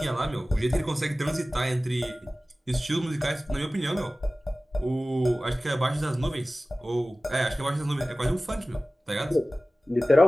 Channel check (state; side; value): normal; both; correlation 0.97